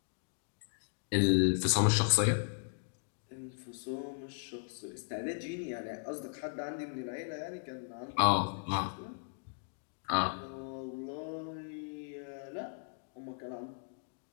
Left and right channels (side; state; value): right; silent; digital silence